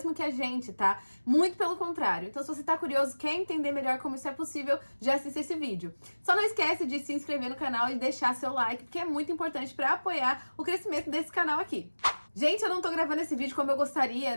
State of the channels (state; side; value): inverted; both; correlation -1.00